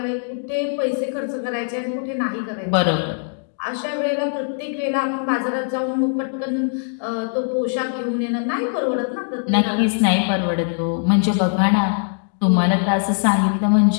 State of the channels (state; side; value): silent; right; digital silence